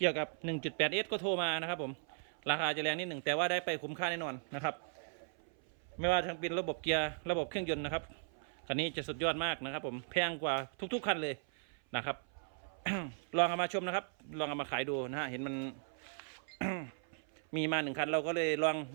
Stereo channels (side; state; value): left; silent; 53 dB below the other